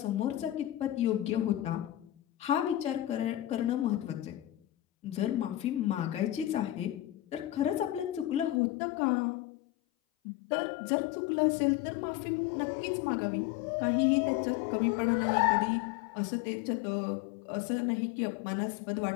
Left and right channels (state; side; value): drops out; right; at 8.6 s